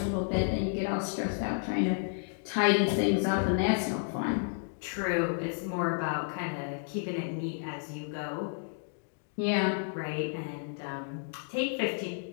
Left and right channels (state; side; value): silent; right; digital silence